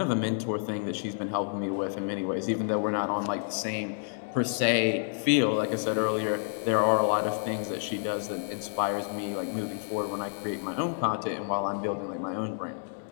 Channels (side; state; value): right; silent; digital silence